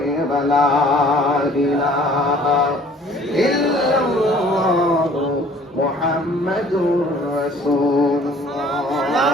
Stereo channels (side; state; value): both; normal; correlation 0.54